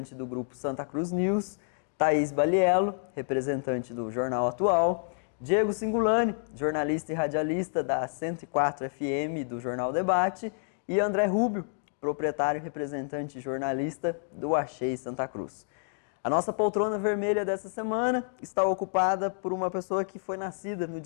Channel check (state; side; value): silent; right; digital silence